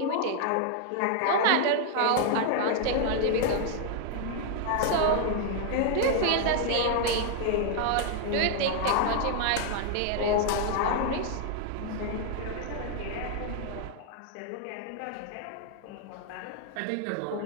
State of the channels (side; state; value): both; different; correlation 0.00